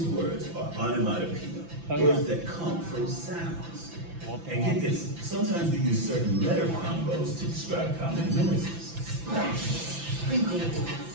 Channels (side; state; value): left; late; 5.9 ms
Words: words are onomatopoeia, words that come from sounds. And get this, sometimes we use certain letter combos to describe common noises. Sprinkle,